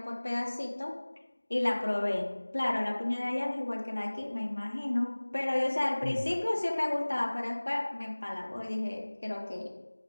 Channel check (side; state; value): both; inverted; correlation -1.00